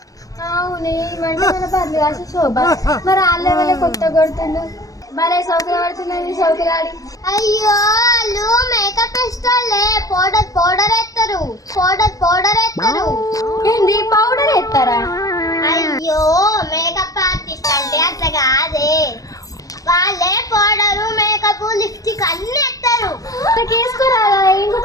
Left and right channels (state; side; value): late; right; 0.17 ms